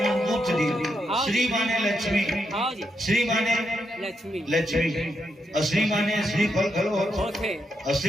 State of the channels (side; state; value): both; normal; correlation 0.82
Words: दी। हाँ। श्री माने लक्ष्मी, हाँ जी श्री माने लक्ष्मी लक्ष्मी, और श्री माने श्री फल खलो होते, होते और